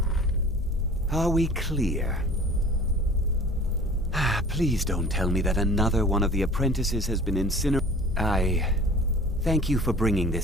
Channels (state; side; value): normal; both; correlation 0.44